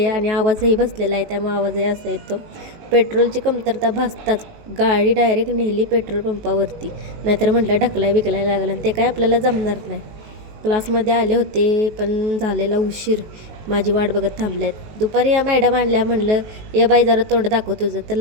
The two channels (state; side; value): late; left; 19 ms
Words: आणि आवाजही बसलेला आहे, त्यामुळे आवाजही असा येतो. पेट्रोलची कमतरता भासताच गाडी डायरेक्ट नेली पेट्रोल पंपावरती. नाहीतर म्हटलं ढकलाय बिकलाय लागलं आणि ते काय आपल्याला जमणार नाही. क्लासमध्ये आले होते पण झालेला उशीर. माझी वाट बघत थांबल्यात. दुपारी या मॅडम आणल्या, म्हणलं ये बाई जरा तोंड दाखव तुझं. तर